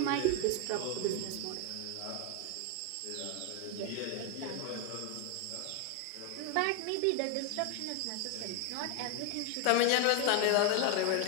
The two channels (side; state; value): both; different; correlation 0.01